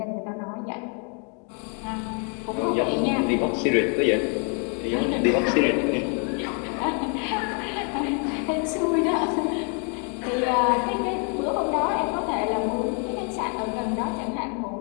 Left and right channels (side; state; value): right; quieter; 39.2 dB